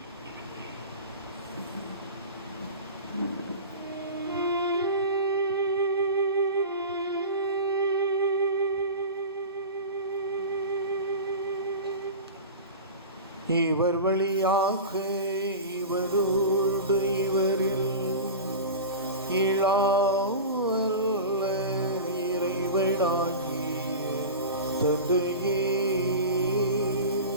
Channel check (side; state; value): both; inverted; correlation -0.30